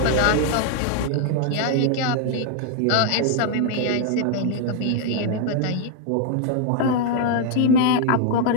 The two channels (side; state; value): both; different; correlation 0.00